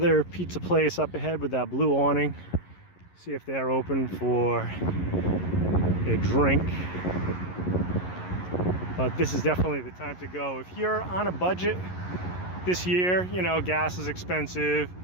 pizza place up ahead with that blue awning. See if they're open for a drink. But this is definitely the time to go. If you're on a budget this year, you know, gas is expensive.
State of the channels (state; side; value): late; right; 11 ms